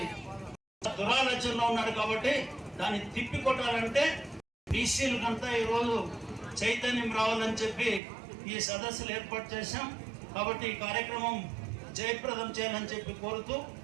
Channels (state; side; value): drops out; left; at 8.0 s